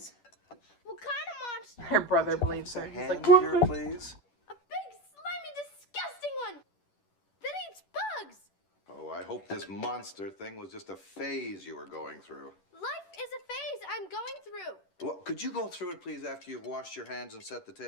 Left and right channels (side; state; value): right; late; 10 ms